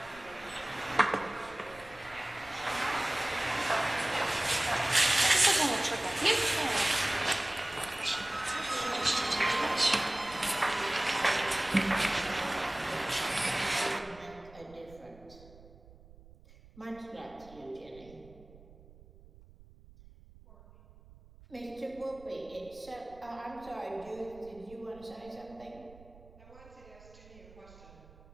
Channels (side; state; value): right; noise; rumble, 22 dB below the sound